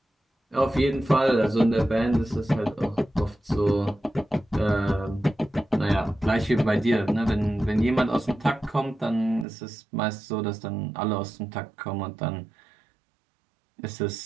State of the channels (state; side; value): drops out; left; at 9.5 s